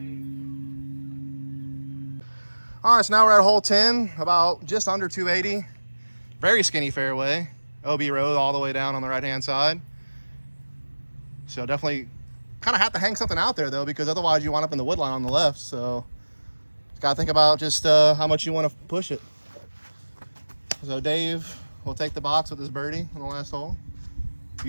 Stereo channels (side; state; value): both; inverted; correlation -1.00